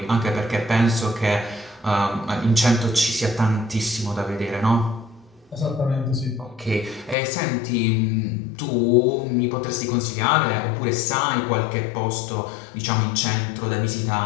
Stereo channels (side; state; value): right; drops out; at 7.2 s